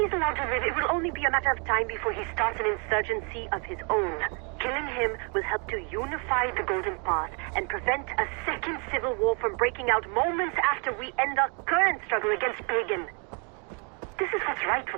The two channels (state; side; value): quieter; left; 36.3 dB